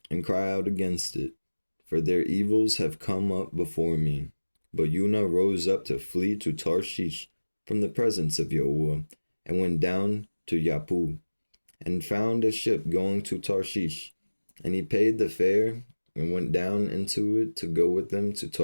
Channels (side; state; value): both; inverted; correlation -1.00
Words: and cry out against it, for their evils have come up before me. But Yunah rose up to flee to Tarshish from the presence of yahuah, and went down to Yappu, and found a ship going to Tarshish. And he paid the fare, and went down into it to go with them to